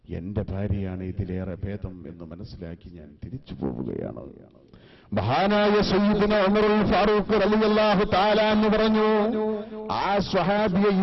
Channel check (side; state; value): both; identical; correlation 1.00